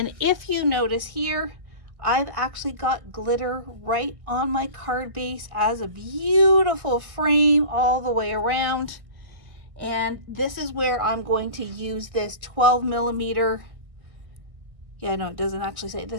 if you notice here, I've actually got glitter right on my card base as a beautiful frame all the way around. And this is where I'm going to use this 12 millimeter. Yeah, no, it doesn't actually say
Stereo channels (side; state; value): left; late; 1.6 ms